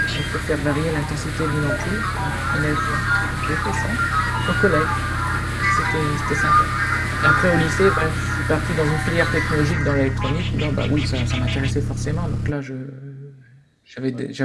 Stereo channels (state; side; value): identical; both; correlation 1.00